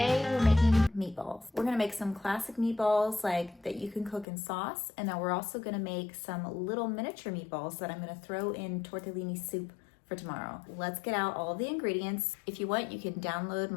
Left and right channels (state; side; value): drops out; right; at 4.2 s